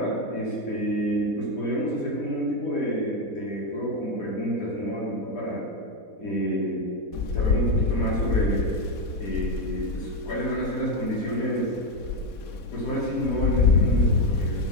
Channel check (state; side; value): late; right; 4.1 ms